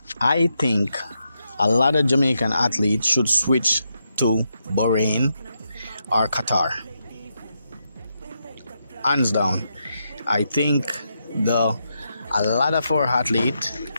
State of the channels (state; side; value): inverted; both; correlation -0.83